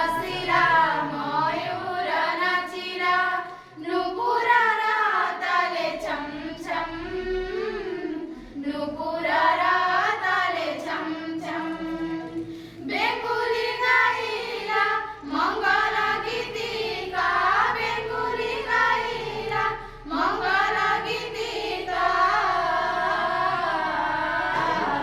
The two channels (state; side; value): identical; both; correlation 1.00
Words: श्रीरा मयूर नाचिरा नुपुरा राताले छम छम नुपुरा राताले छम छम बेंगुली गाईला मंगल गीतिका बेंगुली गाईला मंगल गीतिका